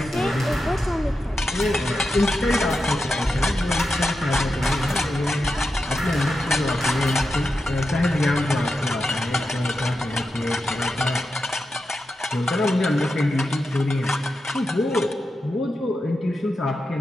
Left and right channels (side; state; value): both; normal; correlation 0.89